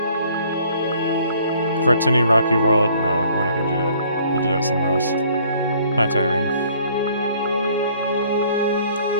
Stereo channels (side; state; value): both; inverted; correlation -0.59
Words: Fertini Rocky World? No, we're not gonna do that. We'll do that somewhere else. Planetary ring.